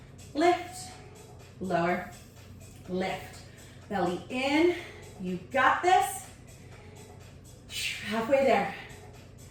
lift, lower, lift. Belly in, you got this. Halfway there.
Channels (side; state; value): both; identical; correlation 1.00